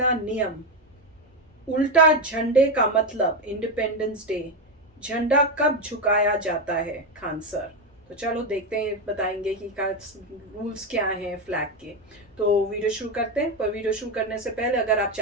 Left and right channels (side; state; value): both; normal; correlation 0.11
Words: नियम, उल्टा झंडे का मतलब इंडिपेंडेंस डे, झंडा कब झुकाया जाता है खान सर। तो चलो देखते हैं, बताएंगे कि रूल्स क्या हैं फ्लैग के। तो वीडियो शुरू करते हैं। पर वीडियो शुरू करने से पहले अगर आप